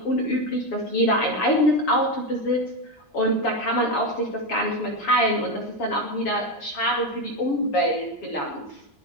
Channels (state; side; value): late; right; 7.2 ms